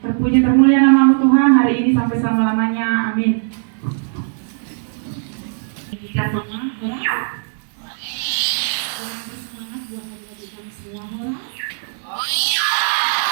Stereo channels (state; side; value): silent; left; digital silence